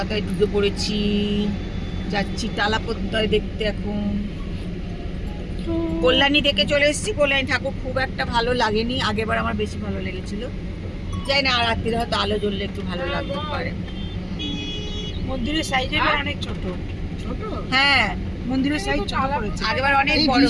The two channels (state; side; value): identical; both; correlation 1.00